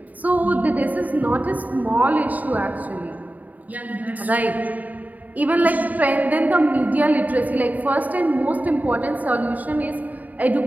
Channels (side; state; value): left; late; 0.077 ms